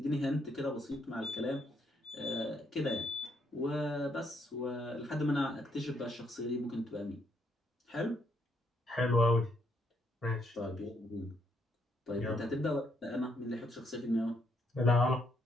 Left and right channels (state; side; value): normal; both; correlation 0.73